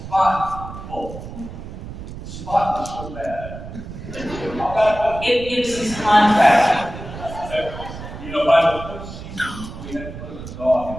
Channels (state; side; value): noise; right; rumble, 11 dB below the sound